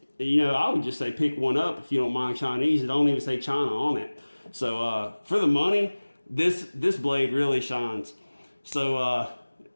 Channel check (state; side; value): inverted; both; correlation -1.00